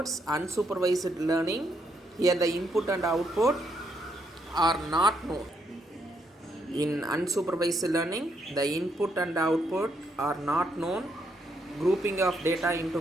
unsupervised learning, here the input and output are not known. In unsupervised learning, the input and output are not known, grouping of data into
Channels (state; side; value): normal; both; correlation 0.75